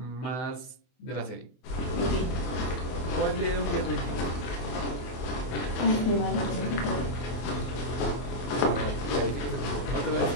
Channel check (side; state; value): right; late; 24 ms